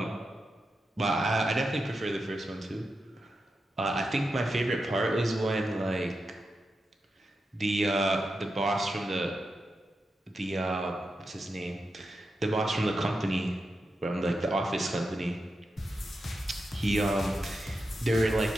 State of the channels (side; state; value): both; normal; correlation 0.88